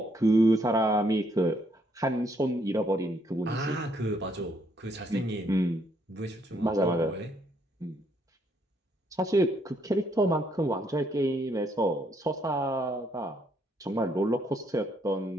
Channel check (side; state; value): both; normal; correlation 0.71